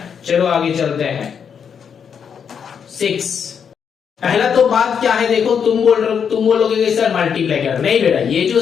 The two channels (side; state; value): right; quieter; 7.2 dB